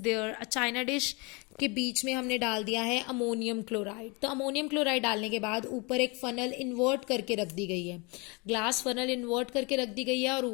there. A china dish के बीच में हमने डाल दिया है ammonium chloride. तो ammonium chloride डालने के बाद ऊपर एक फनल इन्वर्ट करके रख दी गई है, ग्लास फनल इन्वर्ट करके रख दी गई है, और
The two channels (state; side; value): quieter; right; 29.1 dB